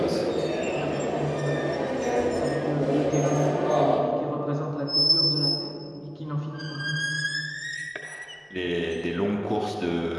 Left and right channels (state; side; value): identical; both; correlation 1.00